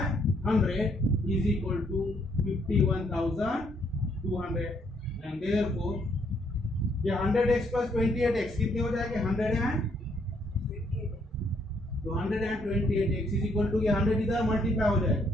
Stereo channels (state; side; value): normal; both; correlation 0.70